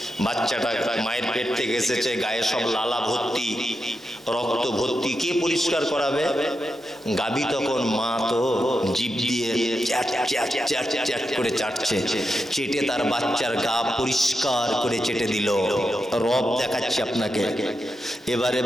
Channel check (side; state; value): both; normal; correlation 0.87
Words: বাচ্চাটা মায়ের পেট থেকে এসেছে, গায়ে সব লালা ভর্তি, রক্ত ভর্তি, কে পরিষ্কার করাবে? গাভী তখন মা তো জিভ দিয়ে চ্যাট চ্যাট চ্যাট চ্যাট করে চাটছে, চেটে তার বাচ্চার গা পরিষ্কার করে চেটে দিল। রব দেখাচ্ছি আপনাকে। এবারে